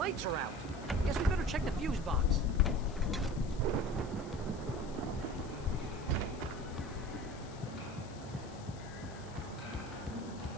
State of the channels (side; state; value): left; noise; hiss, 20 dB below the sound